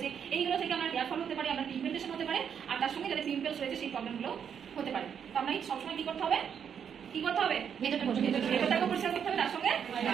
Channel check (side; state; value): left; quieter; 7.8 dB